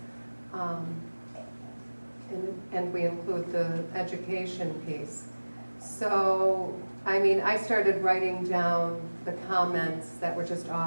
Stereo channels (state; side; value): inverted; both; correlation -1.00